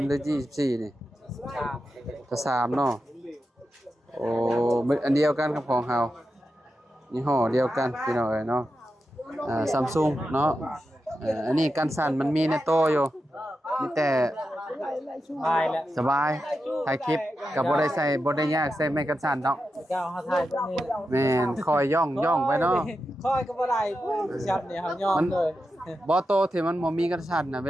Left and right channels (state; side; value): normal; both; correlation 0.89